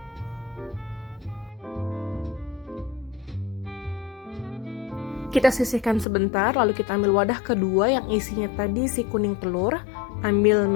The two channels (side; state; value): right; drops out; at 6.1 s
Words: Kita sisihkan sebentar, lalu kita ambil wadah kedua yang isinya tadi si kuning telur. Ambil